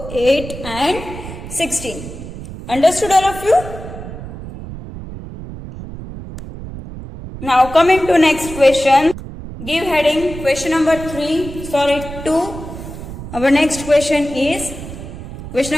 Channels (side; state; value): right; noise; rumble, 11 dB below the sound